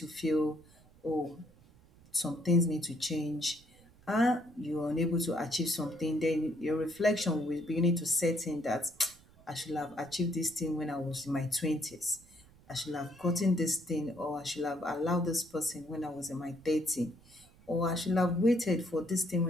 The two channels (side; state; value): right; noise; rumble, 26 dB below the sound